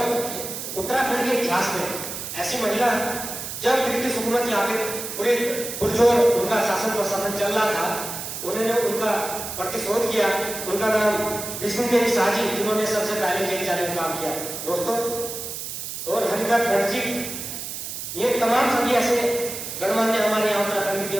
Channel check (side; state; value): right; noise; hiss, 7 dB below the sound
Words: उत्तराखंड के इतिहास में ऐसी महिला, जब ब्रिटिश हुकूमत यहाँ पे पूरे पुरजोर उनका शासन प्रशासन चल रहा था, उन्होंने उनका प्रतिशोध किया। उनका नाम विष्णु देवी शाह जी, जिन्होंने सबसे पहले जेल जाने का काम किया दोस्तों। और हरिदत्त भट्ट जी, ये तमाम सभी ऐसे गणमान्य हमारे यहाँ उत्तराखंड की